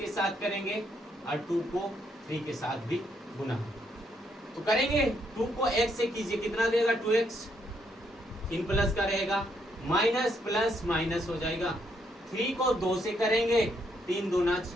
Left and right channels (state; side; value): normal; both; correlation 0.74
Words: साथ करेंगे और 2 को 3 के साथ भी गुना। तो करेंगे 2 को x से कीजिए, कितना देगा 2x, 3 प्लस का रहेगा, माइनस प्लस माइनस हो जाएगा। 3 को 2 से करेंगे, 3 दूना